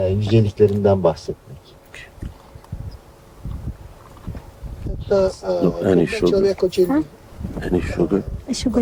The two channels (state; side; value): identical; both; correlation 1.00